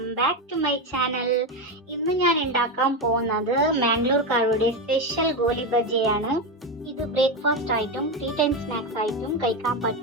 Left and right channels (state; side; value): normal; both; correlation 0.13